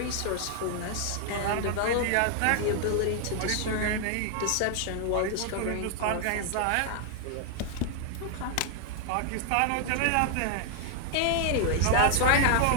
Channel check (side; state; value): both; different; correlation 0.00